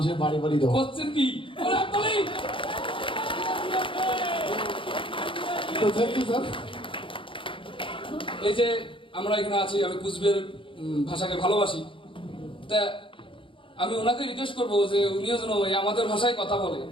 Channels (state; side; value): late; right; 0.25 ms